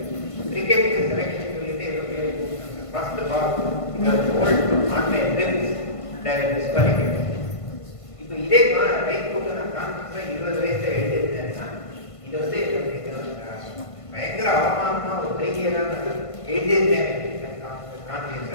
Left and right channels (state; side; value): late; right; 1.5 ms